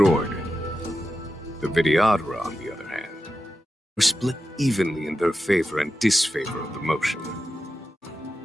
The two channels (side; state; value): both; normal; correlation 0.90